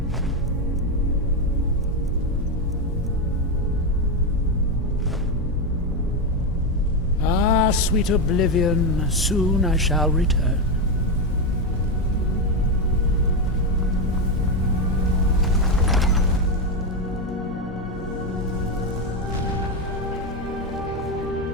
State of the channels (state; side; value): normal; both; correlation 0.09